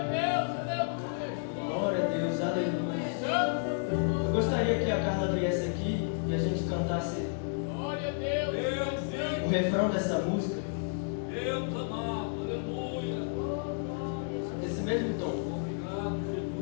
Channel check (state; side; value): silent; right; digital silence